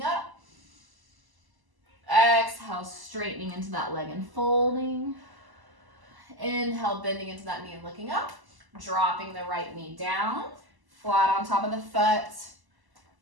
up. Exhale, straightening into that leg and folding. Inhale, bending into that knee and looking up. Dropping the right knee down. Flat on top of the foot.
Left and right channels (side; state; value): left; late; 1.0 ms